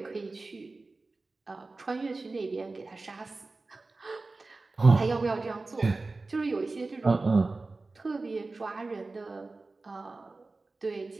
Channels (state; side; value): quieter; left; 3.5 dB